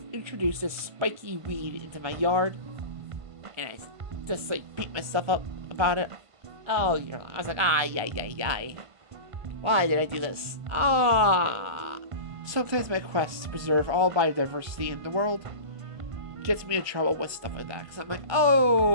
this spiky weed into my yard, and I just like beat myself up about it. Oh, I was like, yay. Why did I do this? Sometimes my quest to preserve all biodiversity in the world gets me in trouble with stuff like that. Because I'm like,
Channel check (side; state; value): left; late; 1.5 ms